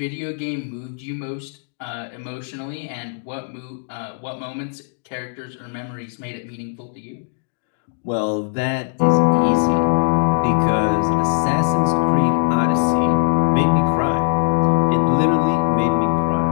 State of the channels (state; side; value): silent; right; digital silence